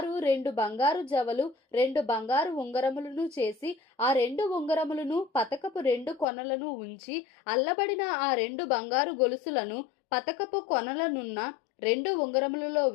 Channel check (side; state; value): right; drops out; at 6.2 s